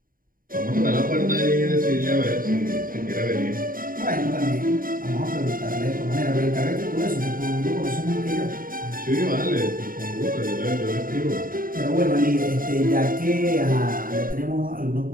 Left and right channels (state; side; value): late; left; 0.41 ms